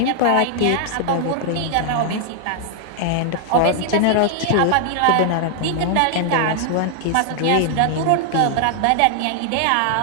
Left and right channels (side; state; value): both; different; correlation 0.00